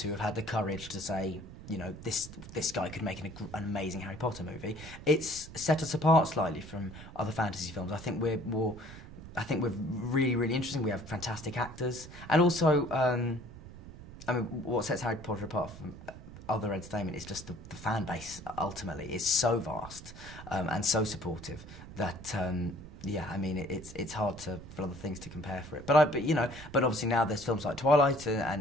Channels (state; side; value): noise; right; rumble, 15 dB below the sound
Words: have had the courage to say, you know, this guy could make an amazing Harry Potter movie, it's set us apart slightly from other fantasy films. I think we're really, really interesting. We have fantastic actors, and also, I mean, what sets Harry Potter apart from other entertainment is just the fan base. Ultimately, is so vast and so supportive that yeah, I mean, it's hard for other things to compare for it. But you know, but obviously now there's films like Twilight